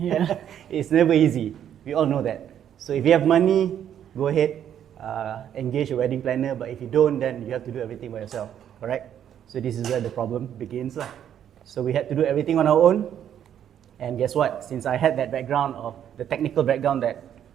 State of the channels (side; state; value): left; quieter; 9.8 dB